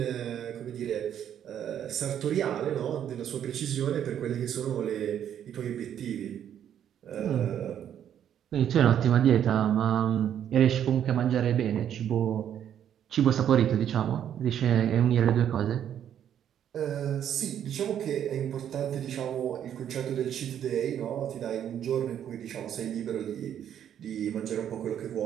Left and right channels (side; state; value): left; quieter; 9.7 dB